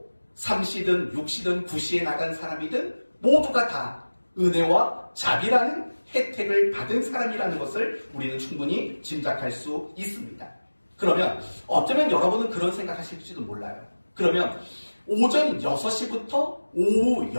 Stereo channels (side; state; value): both; inverted; correlation -1.00